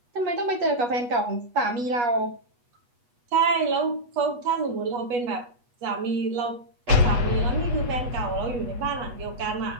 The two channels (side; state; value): left; late; 8.2 ms